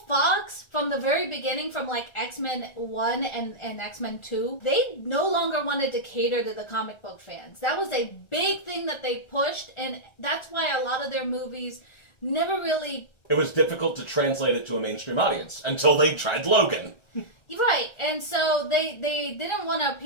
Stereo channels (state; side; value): late; right; 1.3 ms